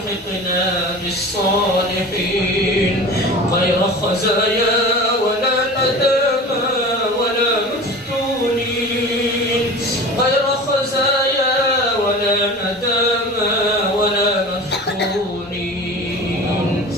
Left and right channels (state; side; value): normal; both; correlation 0.36